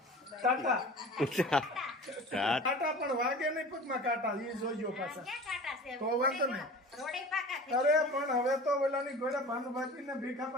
ટાટા ટાટા કાંટા પણ વાગે નહીં પગમાં કાંટા એ જોજો પાછા ક્યાં કાંટા છે? તો વાંધો નહીં. રોડે પાકા થઈ અરે પણ હવે તો ઓલાની ઘોડે ભાનુભાઈ ને ભીખા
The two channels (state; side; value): normal; both; correlation 0.39